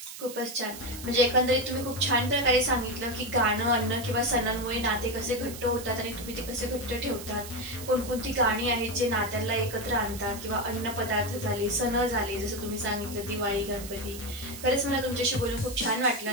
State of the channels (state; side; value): noise; right; hiss, 12 dB below the sound